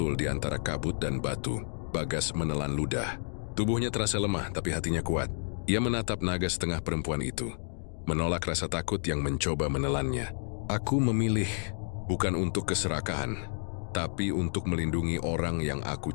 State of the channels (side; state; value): right; silent; digital silence